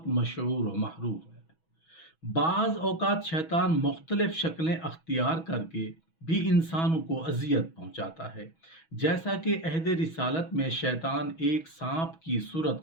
مشہور و معروف ہیں۔ بعض اوقات شیطان مختلف شکلیں اختیار کر کے بھی انسانوں کو اذیت پہنچاتا ہے، جیسا کہ عہد رسالت میں شیطان ایک سانپ کی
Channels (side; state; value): right; late; 6.2 ms